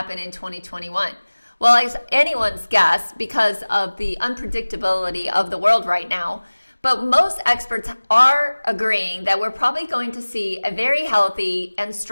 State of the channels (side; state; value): both; inverted; correlation -1.00